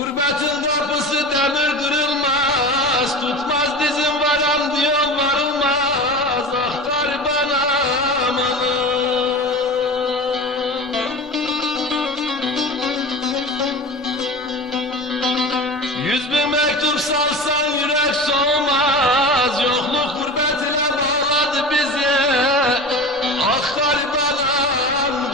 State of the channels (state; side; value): normal; both; correlation 0.31